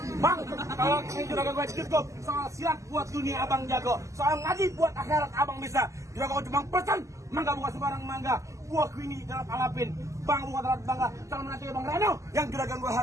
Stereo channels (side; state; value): left; late; 0.15 ms